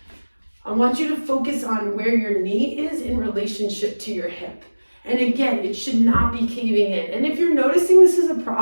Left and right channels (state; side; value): inverted; both; correlation -1.00